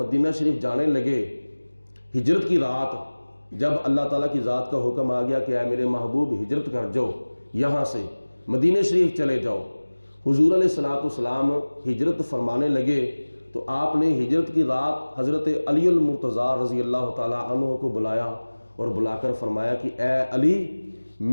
شریف جانے لگے، ہجرت کی رات جب اللہ تعالیٰ کی ذات کا حکم آ گیا کہ اے میرے محبوب ہجرت کر جاؤ، یہاں سے مدینہ شریف چلے جاؤ، حضور علیہ الصلوۃ والسلام ہجرت فرمانے لگے تو آپ نے ہجرت کی رات حضرت علی المرتضیٰ رضی اللہ تعالیٰ عنہ کو بلایا اور بلا کر فرمایا کہ اے علی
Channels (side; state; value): both; inverted; correlation -1.00